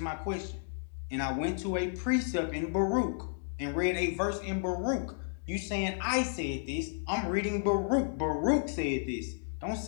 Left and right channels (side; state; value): right; silent; digital silence